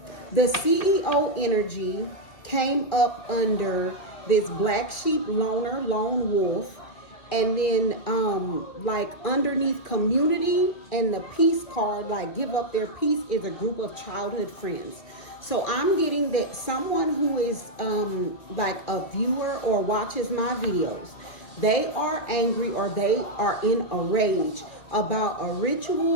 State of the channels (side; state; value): right; late; 2.5 ms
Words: the CEO energy came up under this black sheep, loner, lone wolf. And then like underneath community and the peace card, like give up their peace, is a group of childhood friends. So I'm getting that someone who is like a viewer or watches my videos, they are angry or they are in a rage about a